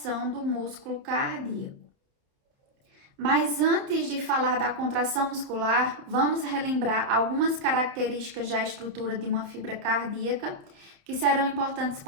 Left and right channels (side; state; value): left; late; 30 ms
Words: do músculo cardíaco. Mas antes de falar da contração muscular, vamos relembrar algumas características da estrutura de uma fibra cardíaca que serão importantes